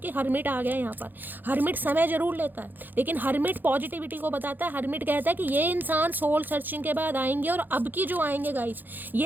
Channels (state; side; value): late; left; 0.088 ms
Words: हर्मिट आ गया है यहाँ पर। हर्मिट समय जरूर लेता है, लेकिन हर्मिट पॉजिटिविटी को बताता है। हर्मिट कहता है कि ये इंसान सोल सर्चिंग के बाद आएंगे, और अब की जो आएंगे गाइस